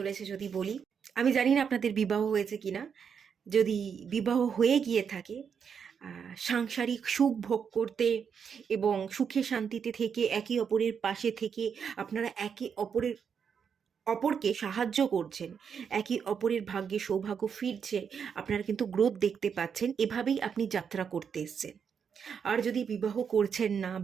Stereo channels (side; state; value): left; quieter; 6.9 dB